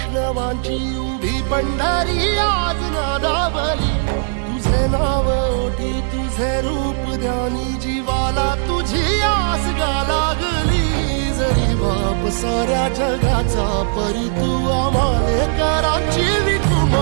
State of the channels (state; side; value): silent; left; 59 dB below the other